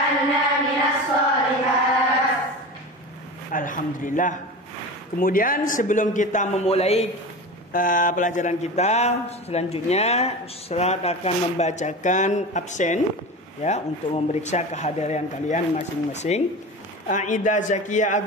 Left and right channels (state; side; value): normal; both; correlation 0.30